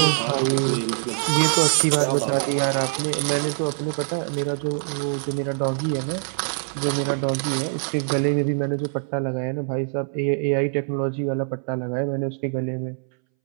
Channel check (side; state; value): left; silent; 63 dB below the other